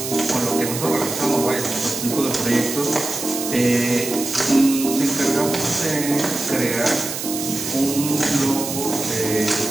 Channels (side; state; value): right; noise; hiss, 6 dB below the sound